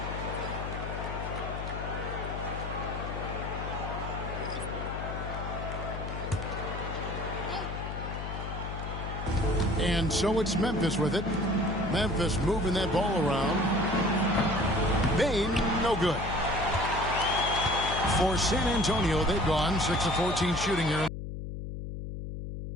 And so it's Memphis with it. Memphis moving that ball around. Bane, no good. For San Antonio, they've gone 6 of 14 shooting here.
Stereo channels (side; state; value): left; noise; hum, 6 dB below the sound